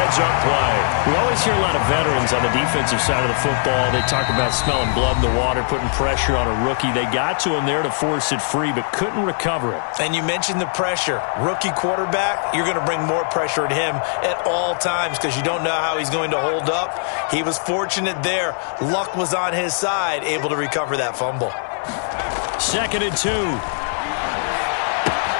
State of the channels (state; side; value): silent; right; digital silence